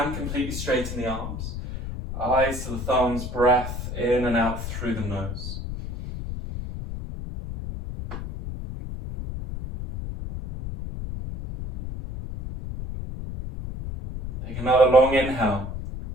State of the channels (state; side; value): noise; left; rumble, 7 dB below the sound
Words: completely straighten the arms. Eyes to the thumbs, breath in and out through the nose. Take another long inhale,